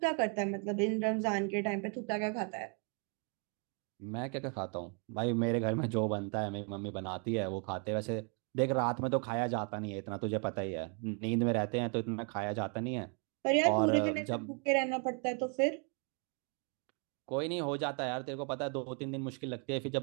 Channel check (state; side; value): quieter; left; 37.7 dB